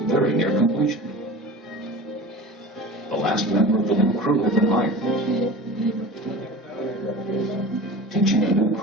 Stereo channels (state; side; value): normal; both; correlation 0.36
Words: near completion. The last member of the new crew had been hired. Teaching a new